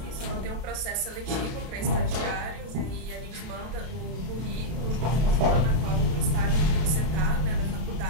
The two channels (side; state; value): left; late; 32 ms